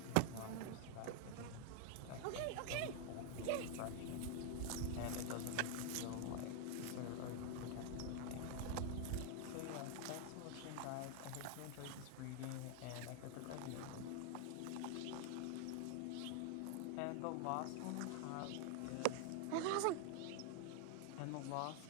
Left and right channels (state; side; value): different; both; correlation 0.00